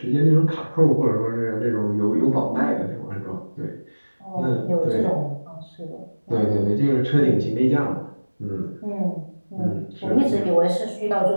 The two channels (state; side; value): inverted; both; correlation -1.00